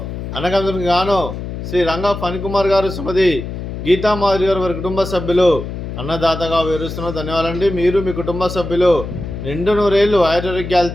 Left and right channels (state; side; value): noise; left; hum, 7 dB below the sound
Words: అన్నగందుకు గాను శ్రీ రంగా ఫణికుమార్ గారు, శ్రీమతి గీతామాధురి గారు, వారి కుటుంబ సభ్యులు అన్నదాతగా వివరిస్తున్నారు. ధన్యవాదాలండి. మీరు మీ కుటుంబ సభ్యులు నిండు నూరేళ్లు